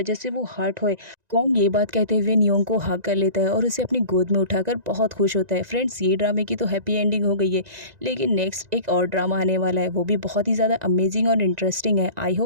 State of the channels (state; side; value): late; left; 1.9 ms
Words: से वो हर्ट होए। कॉन्ग ये बात कहते हुए नियोंग को हग कर लेता है और उसे अपनी गोद में उठाकर बहुत खुश होता है। फ्रेंड्स ये ड्रामे की तो हैप्पी एंडिंग हो गई है, लेकिन नेक्स्ट एक और ड्रामा आने वाला है, वो भी बहुत ही ज़्यादा अमेजिंग और इंटरेस्टिंग है। आई